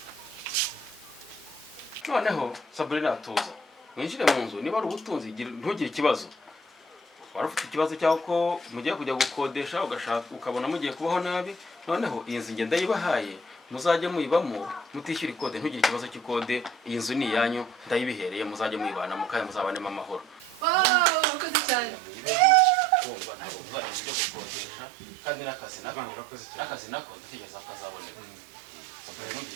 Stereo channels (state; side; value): drops out; left; at 21.2 s